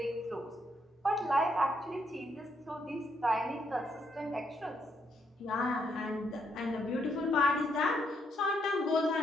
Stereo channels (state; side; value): normal; both; correlation 0.75